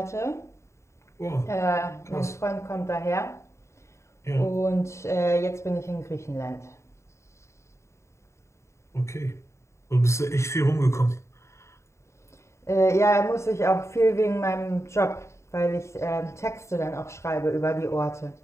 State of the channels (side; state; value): right; late; 0.14 ms